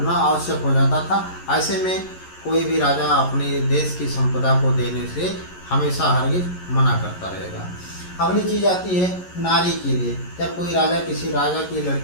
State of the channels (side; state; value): right; late; 11 ms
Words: आवश्यक हो जाता था। ऐसे में कोई भी राजा अपने देश की संपदा को देने से हमेशा हरगिज मना करता रहेगा। अगली चीज आती है नारी के लिए। जब कोई राजा किसी राजा की